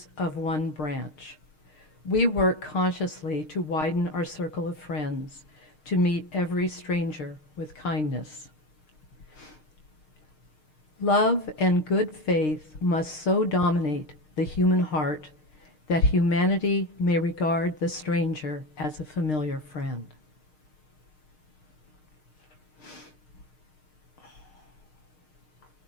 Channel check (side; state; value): right; late; 6.5 ms